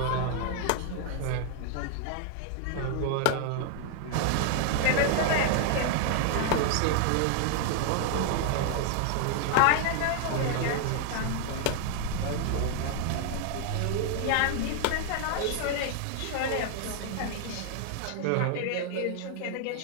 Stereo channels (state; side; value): different; both; correlation 0.00